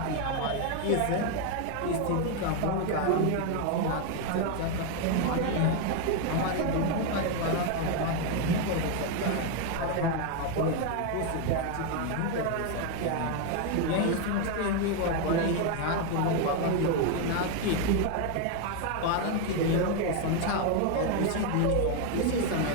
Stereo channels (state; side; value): different; both; correlation 0.01